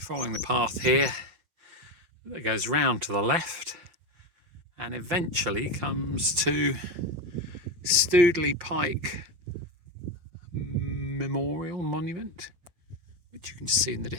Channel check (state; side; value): late; left; 5.8 ms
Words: following the path here that goes round to the left and eventually comes to Stoodley Pike Memorial Monument, which you can see in the